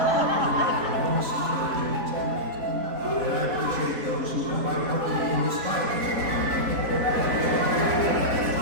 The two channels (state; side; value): late; left; 4.1 ms